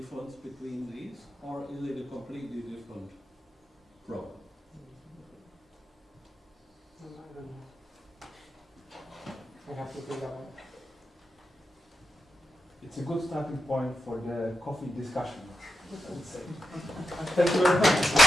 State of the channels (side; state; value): both; normal; correlation 0.89